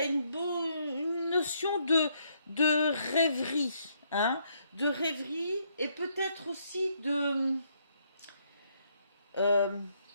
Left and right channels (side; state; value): both; inverted; correlation -0.72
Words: a une notion de rêverie, hein, de rêverie et peut-être aussi de